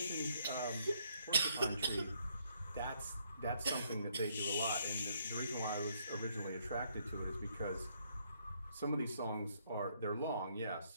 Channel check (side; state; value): both; inverted; correlation -0.71